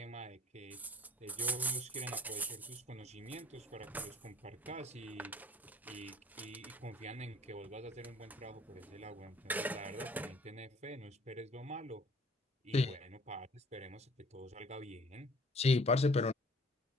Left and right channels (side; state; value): both; normal; correlation 0.53